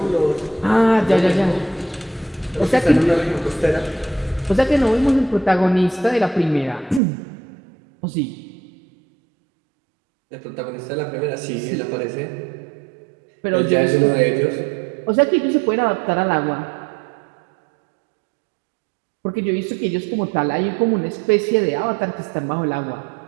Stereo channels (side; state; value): left; drops out; at 7.0 s